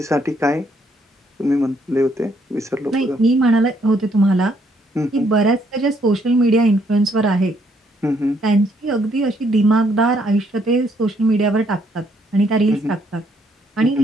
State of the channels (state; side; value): normal; both; correlation 0.70